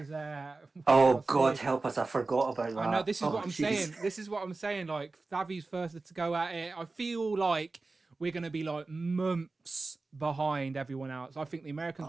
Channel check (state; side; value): quieter; left; 3.6 dB